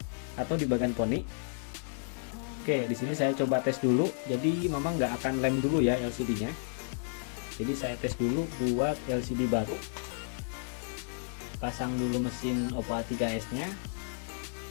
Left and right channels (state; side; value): silent; right; digital silence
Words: atau di bagian poni. Oke, di sini saya coba tes dulu. Jadi memang nggak akan lem dulu ya LCD-nya. Jadi saya tes dulu buat LCD baru. Pasang dulu mesin Oppo A3s-nya.